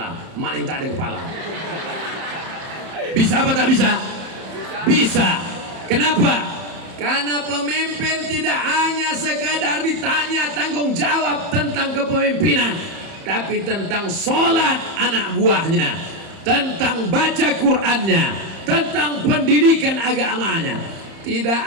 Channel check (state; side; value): late; left; 31 ms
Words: Mana yang tak ada kepala? Bisa apa tak bisa? Bisa. Kenapa? Karena pemimpin tidak hanya sekadar ditanya tanggung jawab tentang kepemimpinan, tapi tentang sholat anak buahnya, tentang baca Qur'annya, tentang pendidikan agamanya. Tidak